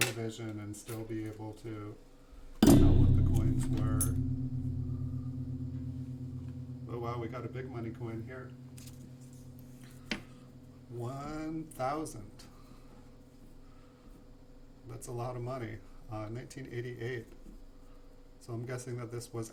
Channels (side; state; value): both; identical; correlation 1.00